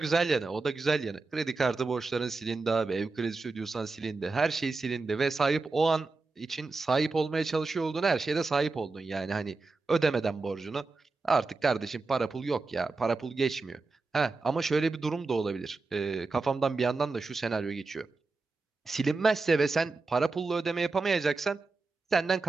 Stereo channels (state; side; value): quieter; left; 3.8 dB